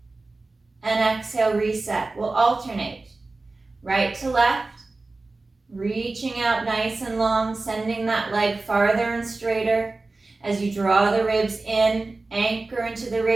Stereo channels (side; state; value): left; quieter; 3.4 dB